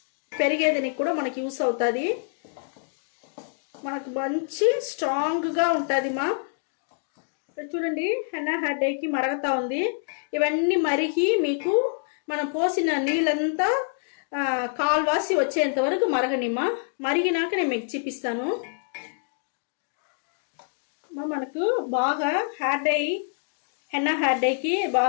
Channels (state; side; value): silent; right; digital silence